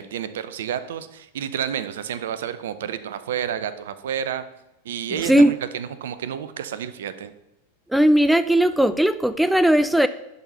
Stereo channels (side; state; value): both; normal; correlation 0.77